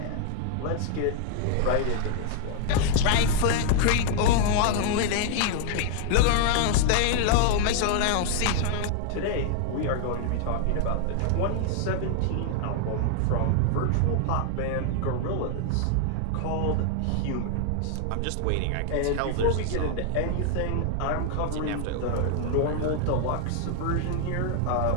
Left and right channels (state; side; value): different; both; correlation -0.01